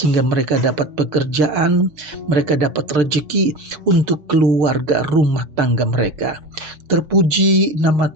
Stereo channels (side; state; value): left; late; 7.4 ms